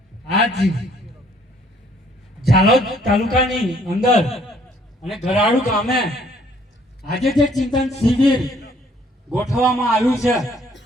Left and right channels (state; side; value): normal; both; correlation 0.62